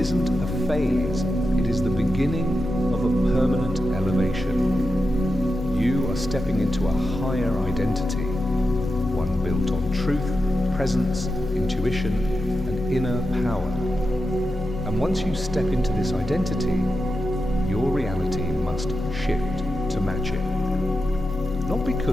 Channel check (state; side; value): normal; both; correlation 0.89